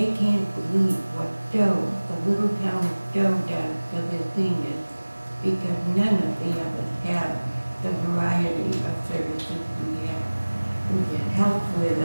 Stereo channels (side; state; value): both; inverted; correlation -1.00